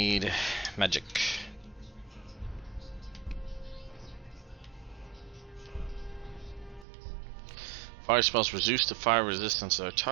Magic. Fire spells reduce the fire resistance of their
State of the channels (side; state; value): left; drops out; at 6.9 s